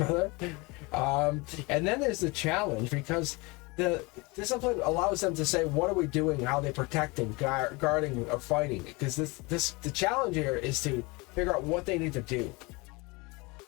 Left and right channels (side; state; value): right; quieter; 25.9 dB